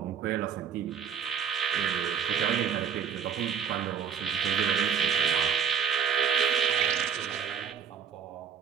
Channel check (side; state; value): left; quieter; 7.2 dB